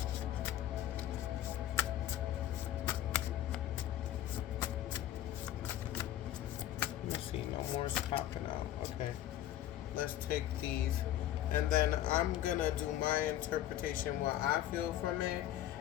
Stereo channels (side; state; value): right; quieter; 12.6 dB